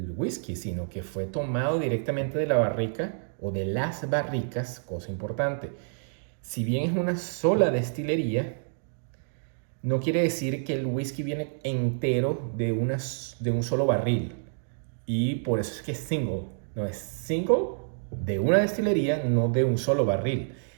whisky, sino que fue tomado directamente de la barrica o de las barricas, cosa importante. Si bien es una sola destilería, no quiere decir que el whisky viene entero de un solo barril. Y por eso es que es single. No es single de una destilería, no de un solo barril.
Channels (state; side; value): silent; left; digital silence